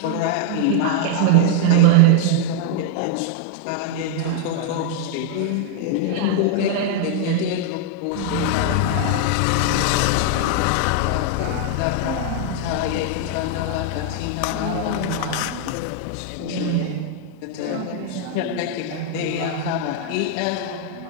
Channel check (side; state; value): both; different; correlation 0.00